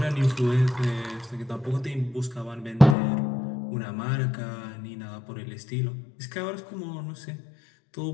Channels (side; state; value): right; drops out; at 3.0 s